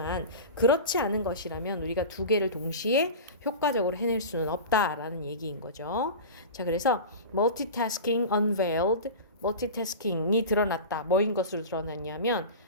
그렇지 않은 것이라면 우리가 두 개를 동시에 효과적으로 해낼 수는 없다라는 얘기인 거죠. 자, 그래서 multitasking unveiled, 멀티태스킹이 드러났다. 뭐인 것으로 드러났냐면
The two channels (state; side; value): inverted; both; correlation -0.30